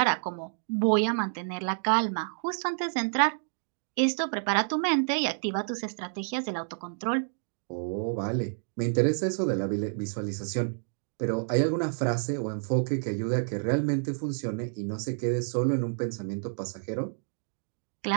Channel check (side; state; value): left; silent; digital silence